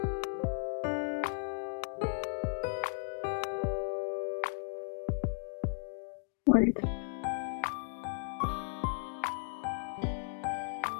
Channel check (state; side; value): silent; right; digital silence